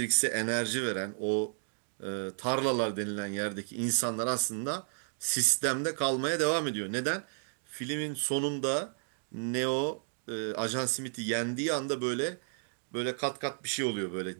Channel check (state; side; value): silent; left; digital silence